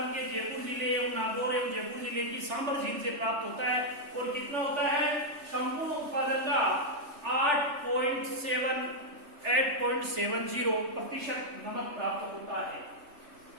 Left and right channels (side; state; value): left; late; 3.4 ms